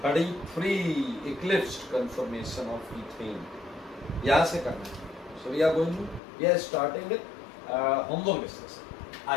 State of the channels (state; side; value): drops out; right; at 6.2 s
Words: 33 eclipsed conformation of ethane, यहाँ से करना है। So we are going to, we are starting with homework discuss.